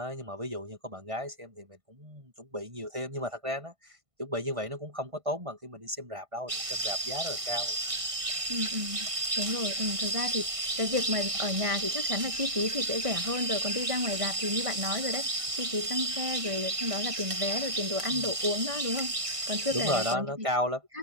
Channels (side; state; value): left; late; 1.5 ms